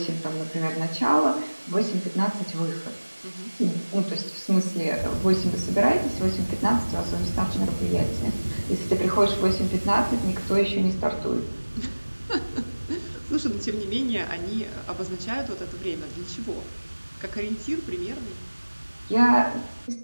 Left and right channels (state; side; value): inverted; both; correlation -1.00